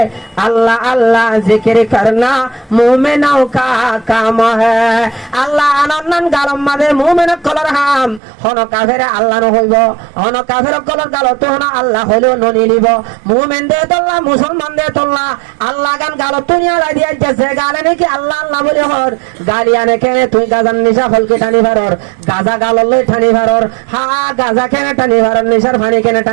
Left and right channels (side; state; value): left; drops out; at 8.2 s